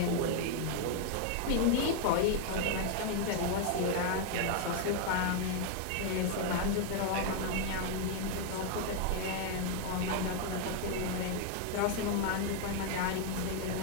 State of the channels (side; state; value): both; different; correlation 0.00